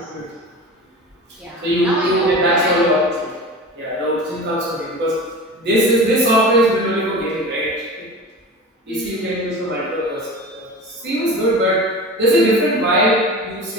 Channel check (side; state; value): both; normal; correlation 0.33